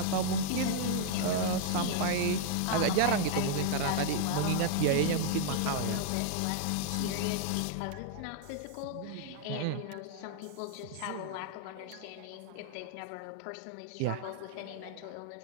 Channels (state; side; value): different; both; correlation -0.01